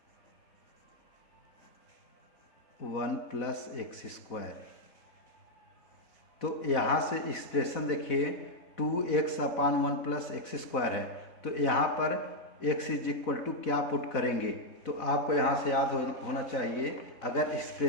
1 plus x square. तो यहाँ से एक्सप्रेशन देखिए 2x upon 1 plus x square है तो यहाँ पर x इज इक्वल टू क्या पुट करेंगे। तो आपको यहाँ से याद होना चाहिए, अगर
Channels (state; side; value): late; right; 4.1 ms